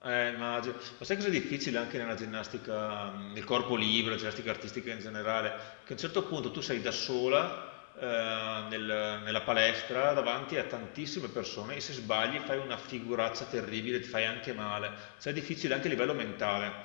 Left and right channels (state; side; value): silent; right; digital silence